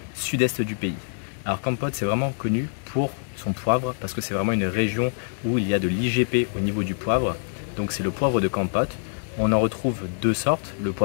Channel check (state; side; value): silent; right; digital silence